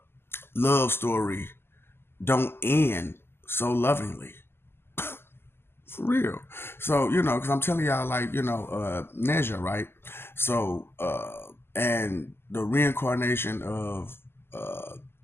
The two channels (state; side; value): late; right; 0.12 ms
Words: love story don't end so lovingly. For real. So, because I'm telling y'all, like, Neja, right? So, and the reincarnation of